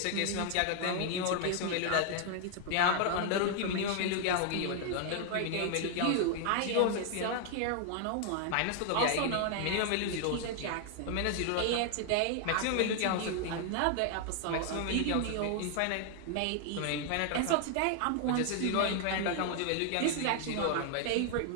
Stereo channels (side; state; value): both; different; correlation 0.00